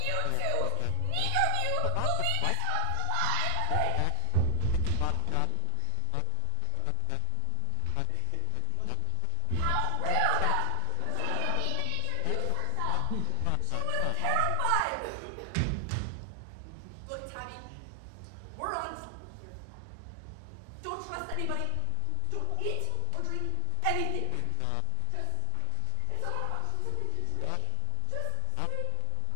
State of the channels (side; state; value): both; different; correlation 0.00